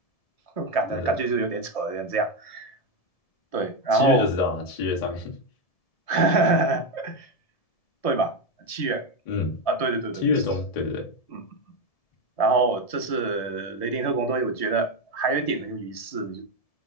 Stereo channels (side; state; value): right; late; 1.7 ms